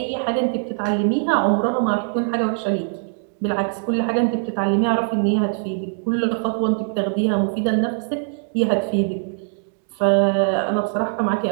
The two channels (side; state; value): left; silent; 64 dB below the other